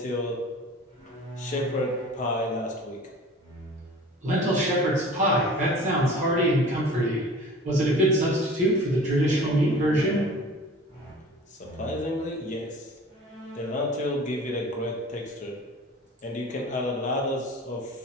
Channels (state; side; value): normal; both; correlation 0.42